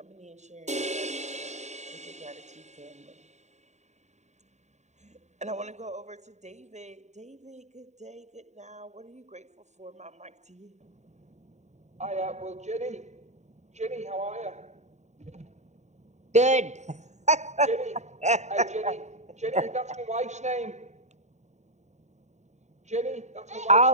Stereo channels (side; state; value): left; late; 0.34 ms